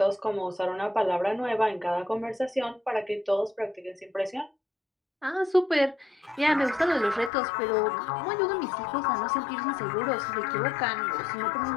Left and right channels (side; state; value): right; drops out; at 7.3 s